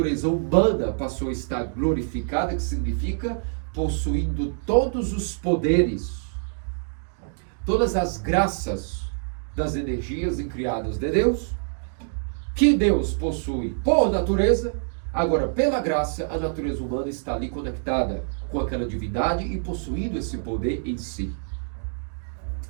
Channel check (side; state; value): left; silent; digital silence